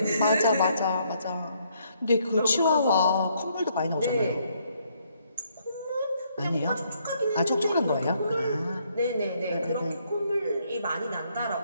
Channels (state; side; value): inverted; both; correlation -0.71